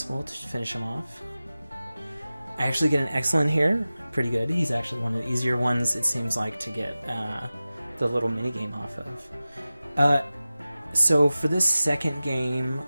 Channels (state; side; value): inverted; both; correlation -0.96